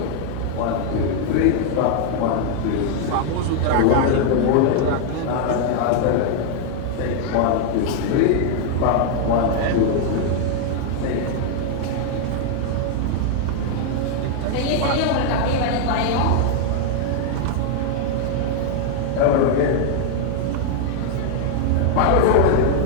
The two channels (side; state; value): both; different; correlation 0.00